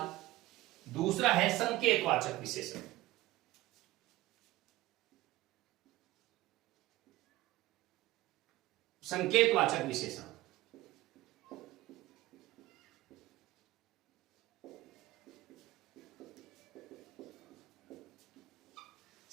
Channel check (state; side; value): quieter; left; 17.4 dB